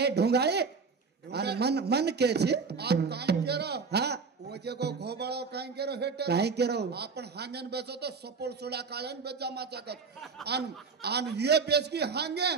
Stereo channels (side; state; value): left; quieter; 5.1 dB